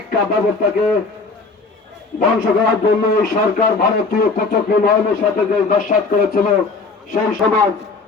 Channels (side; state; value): right; quieter; 4.0 dB